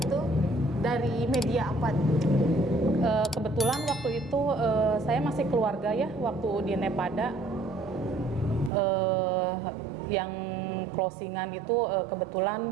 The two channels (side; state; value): left; drops out; at 8.7 s